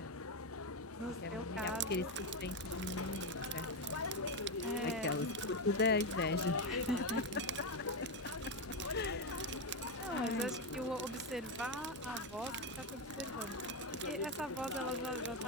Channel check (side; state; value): both; normal; correlation 0.09